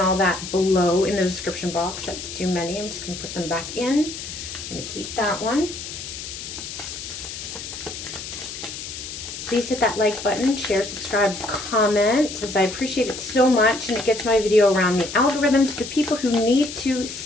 all that, below in the description box. That's too many. I'm just going to put them back in. I'm going to keep that one. Please hit that like button, share, subscribe, comment, as I appreciate it so much, and it gets my video around the algorithm to the people who need to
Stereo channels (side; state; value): left; noise; hiss, 9 dB below the sound